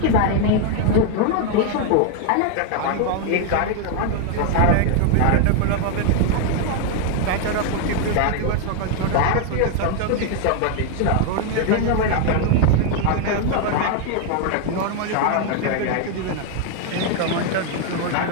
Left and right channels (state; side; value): different; both; correlation 0.01